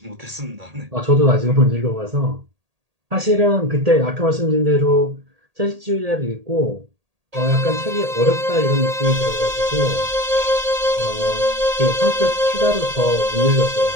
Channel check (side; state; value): left; late; 1.8 ms